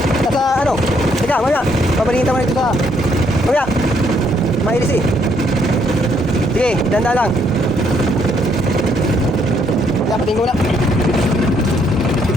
Nasa ano? Teka, mamaya. Pabalingin naman ito sa... Mamaya. Mahilis eh. Sige, danda lang. Dapatin ko na.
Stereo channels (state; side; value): normal; both; correlation 0.70